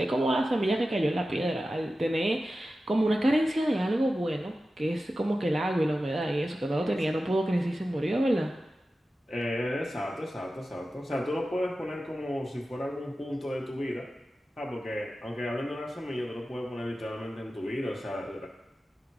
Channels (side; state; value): both; normal; correlation 0.94